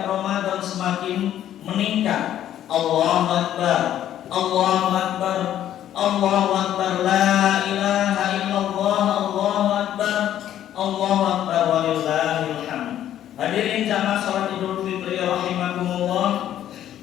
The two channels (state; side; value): quieter; right; 11.4 dB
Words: Ramadan semakin meningkat. Allahu Akbar, Allahu Akbar, Allahu Akbar, la ilaha illallah, Allahu Akbar, Allahu Akbar, walillahil hamd. Hadirin jamaah salat Idul Fitri rahimakumullah.